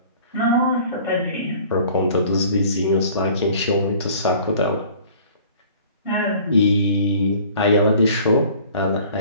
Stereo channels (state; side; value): inverted; both; correlation -0.50